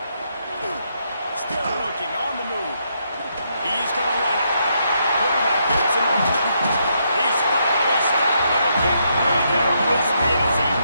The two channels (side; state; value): both; inverted; correlation -0.77